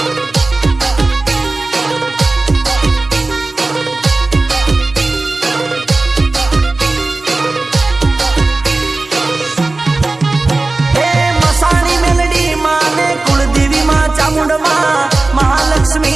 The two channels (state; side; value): quieter; left; 3.3 dB